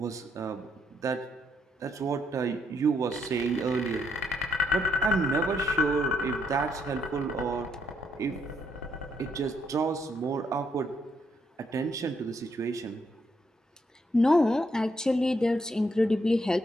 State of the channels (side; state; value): both; normal; correlation 0.75